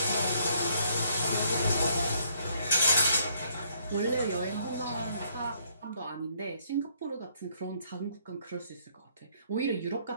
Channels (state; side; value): inverted; both; correlation -0.67